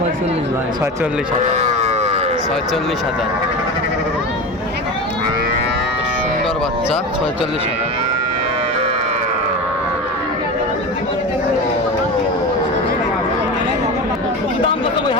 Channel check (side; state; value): both; normal; correlation 0.26